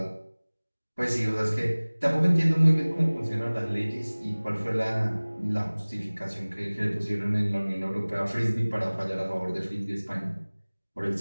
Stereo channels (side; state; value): both; inverted; correlation -1.00